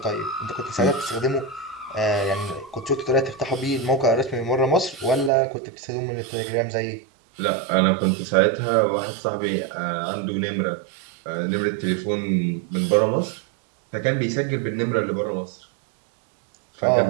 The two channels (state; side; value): drops out; left; at 5.3 s